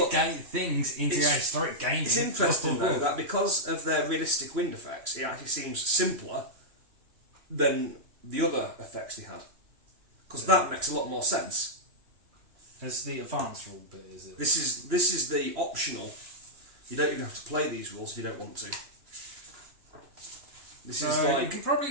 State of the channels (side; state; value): left; late; 3.0 ms